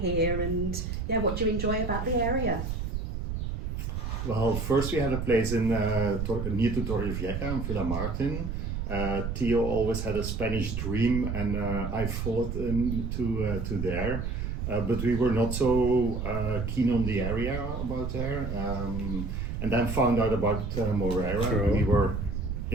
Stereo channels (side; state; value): right; noise; rumble, 3 dB below the sound